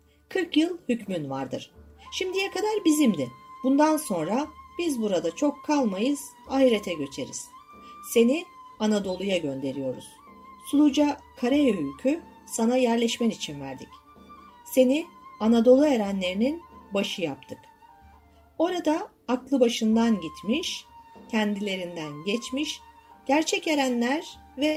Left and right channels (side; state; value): both; identical; correlation 1.00